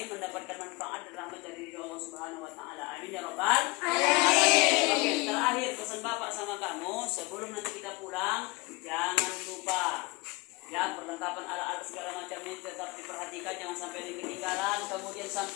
mendapatkan manfaat dan rahmat dari Allah Subhanahu wa taala. Amin ya rabbal alamin. Oke, terakhir pesan Bapak sama kamu sebelum nanti kita pulang, jangan lupa ya perlengkapan alat-alat segala macamnya tetap diperhatikan, jangan sampai ketinggalan. Kemudian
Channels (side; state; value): right; quieter; 24.3 dB